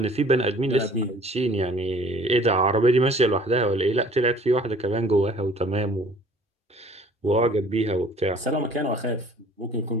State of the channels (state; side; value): normal; both; correlation 0.52